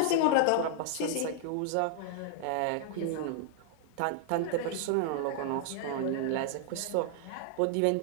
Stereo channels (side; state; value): both; different; correlation 0.00